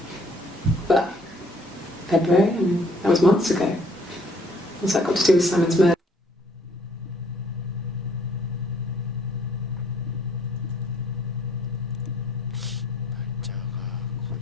But February, I mean, that was months ago. What's that got to do with Simon's murder? 날짜가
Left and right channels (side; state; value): both; normal; correlation 0.62